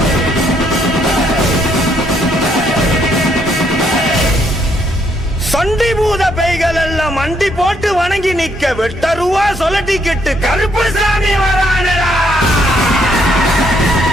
சண்டி பூத பேய்கள் எல்லாம் மண்டி போட்டு வணங்கி நிக்க, வெட்டருவா சொல்லட்டிக்கிட்டு கருப்பு சாமி வரானடா.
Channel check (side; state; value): both; normal; correlation 0.71